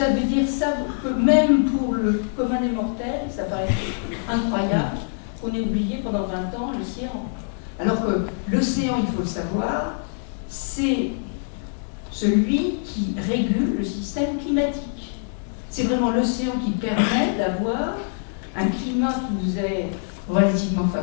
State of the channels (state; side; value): silent; right; digital silence